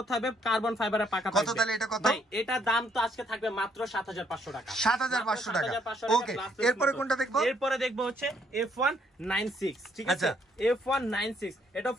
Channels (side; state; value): both; normal; correlation 0.70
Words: থাকবে, কার্বন ফাইবারের পাকা থাকবে। কত তাহলে এটা কত? ভাই এটা দাম তো আজকে থাকবে মাত্র 7500 টাকা, 7500 টাকা। ওকে এরপরে কোনটা দেখবো? এরপরে দেখবো হচ্ছে F196। ঠিক আছে, F196 এটা